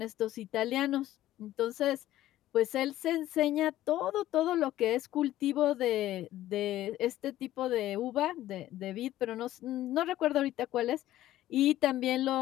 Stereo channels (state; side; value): quieter; right; 14.2 dB